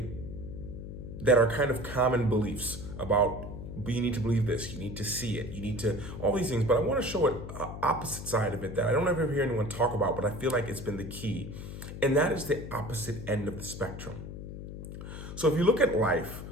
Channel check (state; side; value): noise; left; hum, 9 dB below the sound